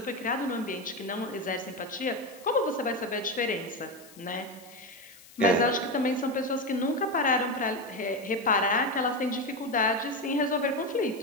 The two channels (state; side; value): noise; left; hiss, 22 dB below the sound